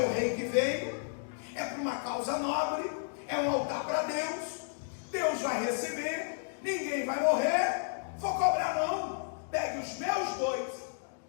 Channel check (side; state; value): right; silent; digital silence